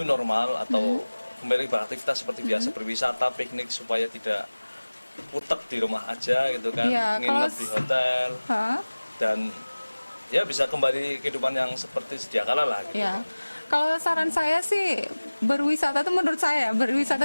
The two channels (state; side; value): inverted; both; correlation -1.00